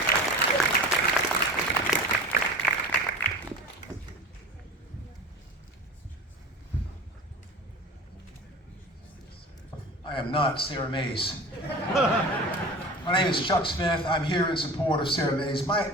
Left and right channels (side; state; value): both; normal; correlation 0.36